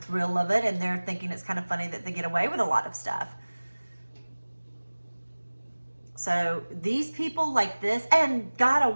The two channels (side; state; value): both; inverted; correlation -1.00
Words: of it, and they're thinking it's kind of funny that they get away with a lot of stuff. So these people like this and got